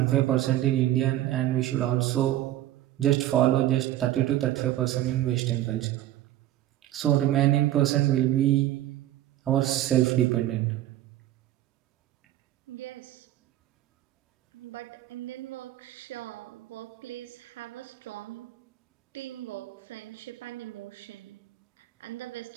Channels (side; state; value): left; quieter; 13.8 dB